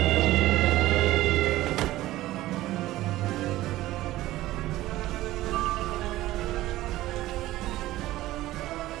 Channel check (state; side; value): quieter; left; 16.2 dB